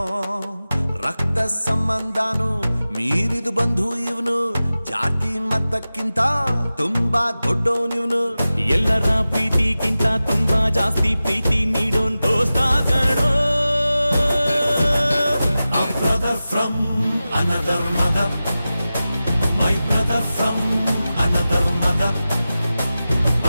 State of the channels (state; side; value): inverted; both; correlation -0.95